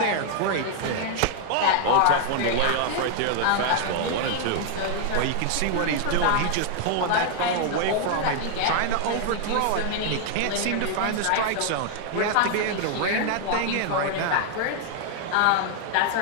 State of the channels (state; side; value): different; both; correlation 0.00